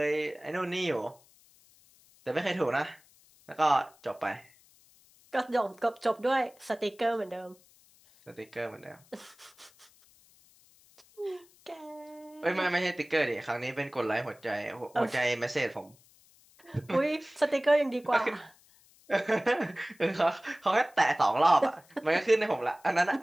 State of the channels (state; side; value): noise; left; hiss, 29 dB below the sound